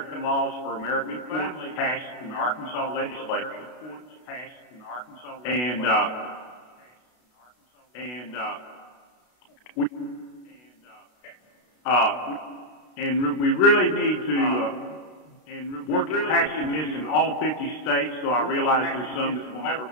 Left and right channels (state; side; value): late; right; 32 ms